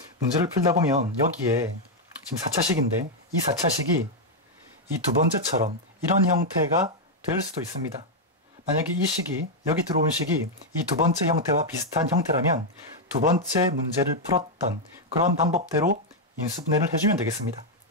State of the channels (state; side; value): normal; both; correlation 0.00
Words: 문제를 풀다 보면 여기에 지금 4차식인데 이 4차식이 이 두 번째처럼 이런 형태가 될 수도 있습니다. 만약에 이 식이, 여기 들어온 식이 이 두 번째 형태와 비슷한 형태라면 두 번째 문제를 풀었던 그런 방법대로 인수분해를 해주면 되겠습니다.